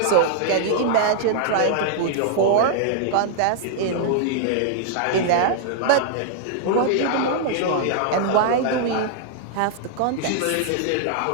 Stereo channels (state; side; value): different; both; correlation -0.01